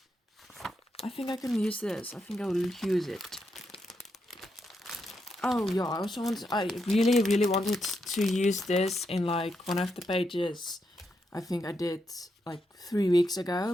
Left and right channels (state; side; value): normal; both; correlation 0.82